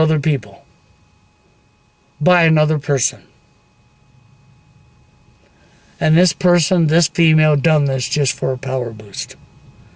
people by another person. And this person, this female, done this just for a power boost.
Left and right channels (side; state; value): both; identical; correlation 1.00